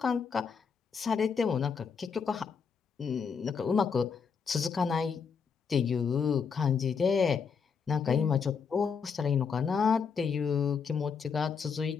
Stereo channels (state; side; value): quieter; right; 6.0 dB